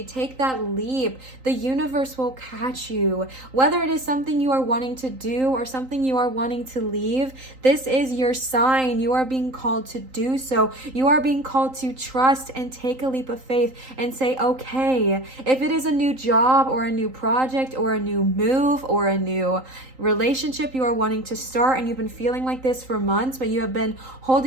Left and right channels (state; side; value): late; left; 3.8 ms